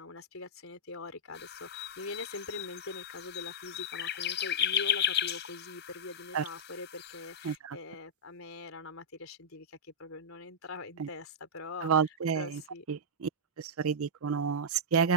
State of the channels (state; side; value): normal; both; correlation -0.12